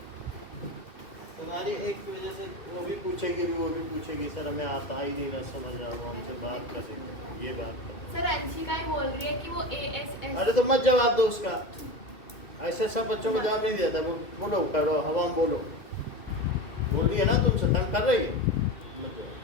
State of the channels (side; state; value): right; late; 2.2 ms